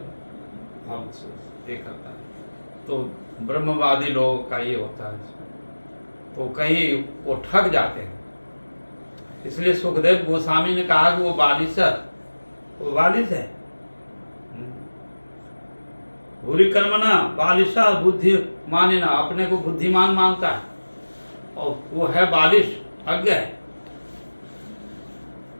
हम ये करता है। तो ब्रह्मवादी लोगों का ये होता है। तो कहीं वो ठग जाते हैं। इसलिए सुखदेव गोस्वामी ने कहा कि वो बालिश है, वो बालिश है। भूरी कर्मणा बालिशा बुद्धि मानिना, अपने को बुद्धिमान मानता है और वो है बालिश, अज्ञ है।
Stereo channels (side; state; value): both; inverted; correlation -1.00